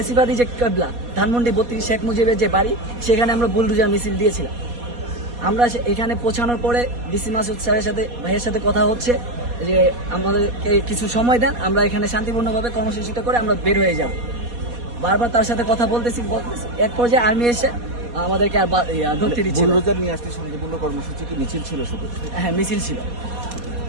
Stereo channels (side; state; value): left; late; 4.2 ms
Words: যে কেবলা ধানমন্ডি 32 শেখ মুজিবের যে বাড়ি, সেখানে আমরা বুলডোজার মিছিল দিয়েছিলাম। আমরা এখানে পৌঁছানোর পরে ডিসি মাসুদ স্যারের সাথে ভাইয়ের সাথে কথা হচ্ছে যে আমাদেরকে কিছু সময় দেন, আমরা এখানে শান্তিপূর্ণভাবে কর্মসূচিটা করে আমরা বের হয়ে যাব। বারবার তার সাথে কথা বলতেছি। এক পর্যায়ে আর্মি এসে আমাদেরকে আর ধরতে দিচ্ছিল। বুলডোজার নিয়ে আসলে শান্তিপূর্ণ কর্মসূচি কি মিছিল ছিল শুধু? হ্যাঁ, মিছিল ছিল।